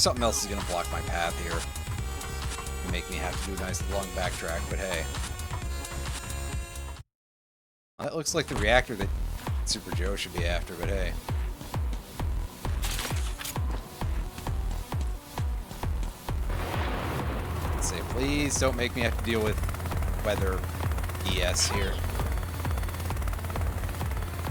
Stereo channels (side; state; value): both; identical; correlation 1.00